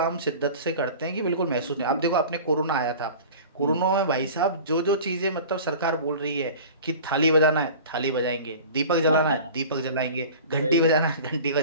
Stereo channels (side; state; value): both; inverted; correlation -0.39